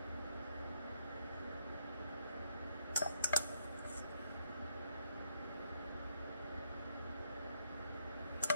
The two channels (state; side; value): inverted; both; correlation -0.74